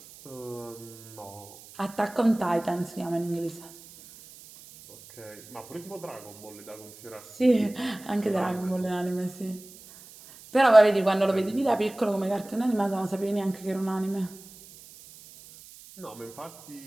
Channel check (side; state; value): right; noise; hiss, 20 dB below the sound